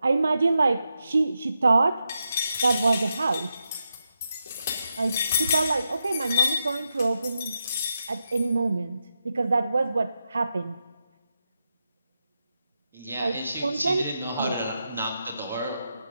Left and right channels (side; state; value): both; inverted; correlation -0.86